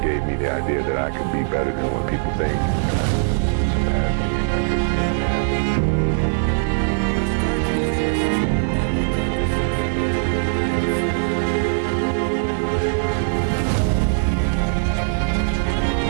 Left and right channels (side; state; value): left; silent; digital silence